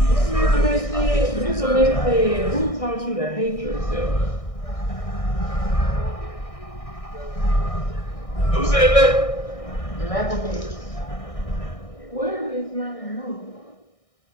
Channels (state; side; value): late; right; 1.6 ms